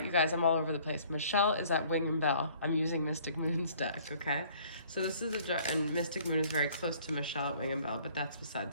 you guys, I'm all over the place. Michelle is at Wing and Bell. I'm using Mystic Moon's deck, okay? So this is and Mystic Moon is very close to Michelle at Wing and Bell, but that's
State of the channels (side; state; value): both; inverted; correlation -0.57